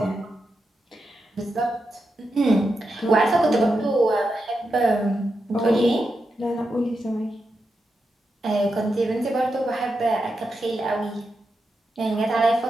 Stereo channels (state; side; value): normal; both; correlation 0.87